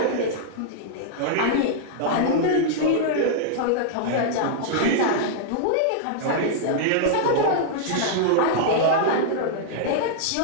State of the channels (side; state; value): both; different; correlation -0.01